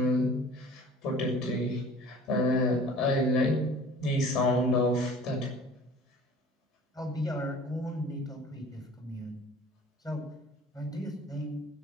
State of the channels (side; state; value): both; normal; correlation 0.46